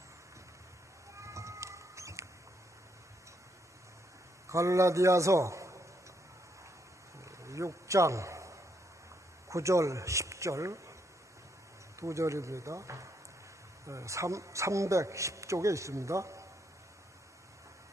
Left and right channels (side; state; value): both; normal; correlation 0.75